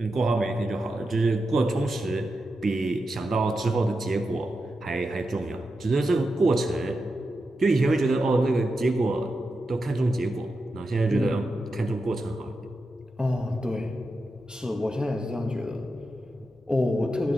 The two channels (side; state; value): both; normal; correlation 0.89